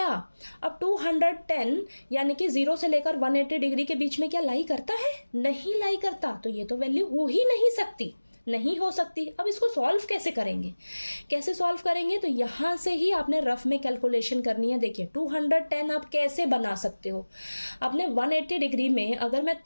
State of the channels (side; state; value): both; inverted; correlation -1.00